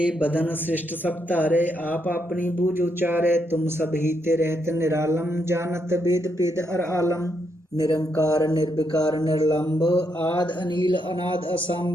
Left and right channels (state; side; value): normal; both; correlation 0.78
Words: बदन श्रेष्ठ सब तारे, आप अपनी बूझ उचारे, तुम सब ही ते रहत निरालम, जानत वेद पेद अर आलम। निरंकार निर्विकार निर्लंब, आद अनिल अनाद